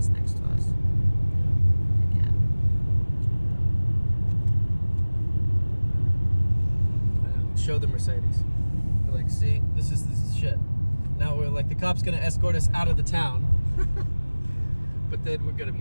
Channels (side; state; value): both; inverted; correlation -1.00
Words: next to us. Show the Mercedes. We're like, see, this is shit. Now we're like, the cop's gonna escort us out of the town, but then we're gonna